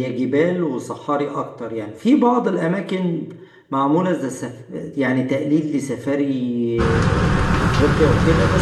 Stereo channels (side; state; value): both; identical; correlation 1.00